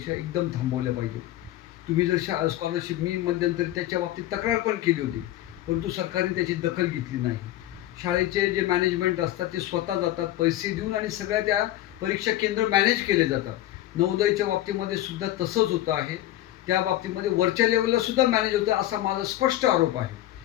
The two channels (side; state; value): right; quieter; 14.5 dB